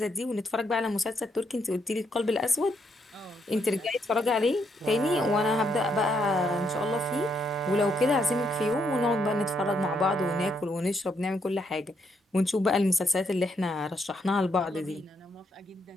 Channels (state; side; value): normal; both; correlation 0.75